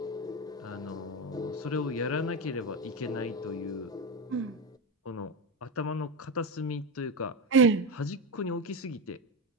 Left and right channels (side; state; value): both; normal; correlation 0.15